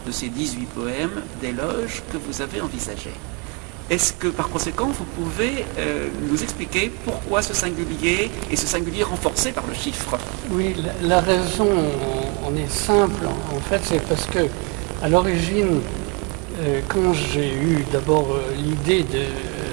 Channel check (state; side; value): quieter; left; 32.8 dB